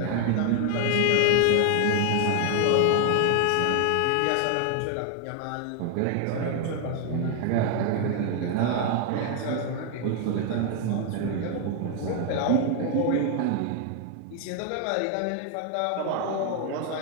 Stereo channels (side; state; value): both; different; correlation 0.00